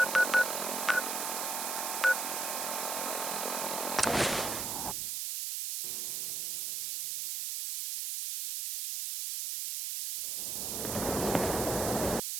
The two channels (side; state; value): right; noise; hiss, 2 dB below the sound